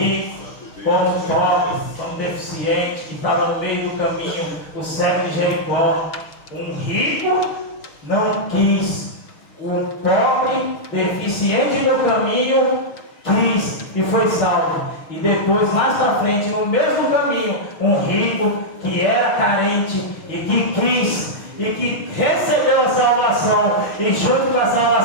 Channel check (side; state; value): right; late; 6.4 ms